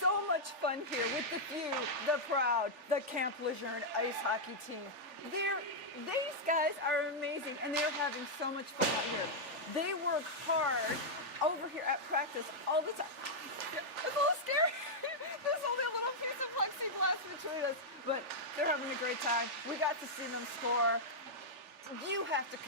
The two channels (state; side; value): late; left; 3.4 ms